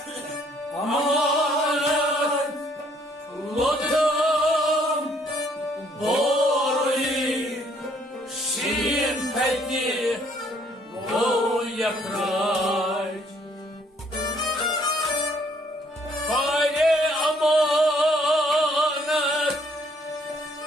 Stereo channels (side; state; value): both; normal; correlation 0.65